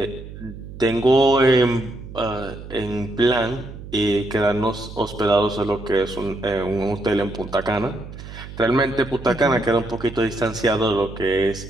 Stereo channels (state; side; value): noise; right; hum, 13 dB below the sound